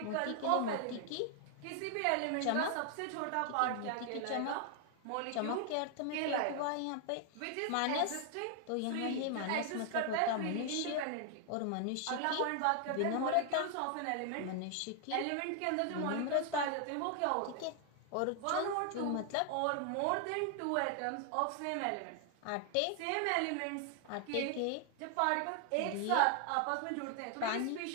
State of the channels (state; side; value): different; both; correlation 0.00